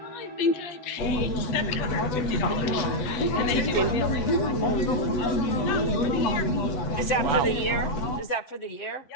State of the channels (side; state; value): right; late; 8.1 ms